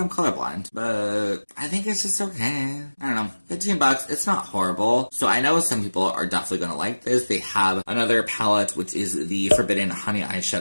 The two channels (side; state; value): both; inverted; correlation -1.00